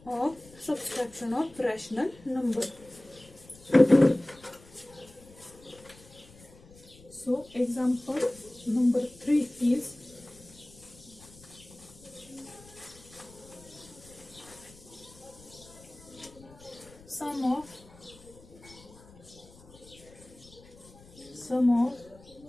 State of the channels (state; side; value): noise; left; rumble, 22 dB below the sound